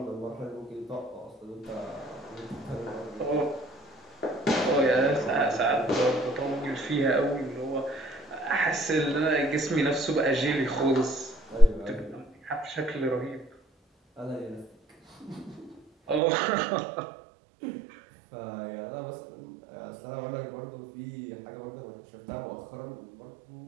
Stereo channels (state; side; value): drops out; left; at 16.2 s